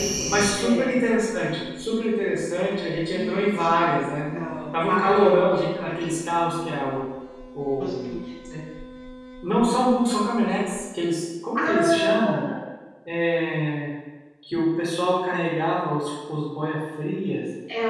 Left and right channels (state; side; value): identical; both; correlation 1.00